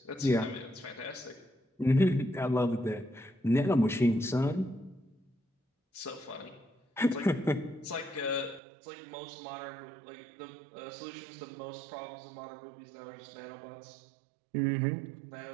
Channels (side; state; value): left; drops out; at 8.6 s